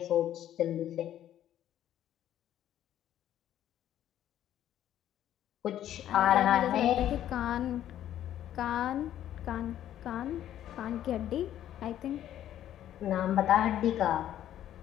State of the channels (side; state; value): right; quieter; 11.6 dB